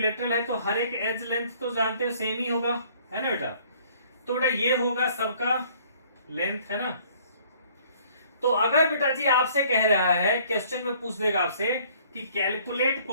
है तो हर एक एज लेंथ तो जानते हो सेम ही होगा, है ना बेटा। तो बेटा ये होगा सबका लेंथ, है ना। तो अगर बेटा जी आपसे कह रहा है, क्वेश्चन में पूछ देगा आपसे कि calculate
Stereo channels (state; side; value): inverted; both; correlation -0.58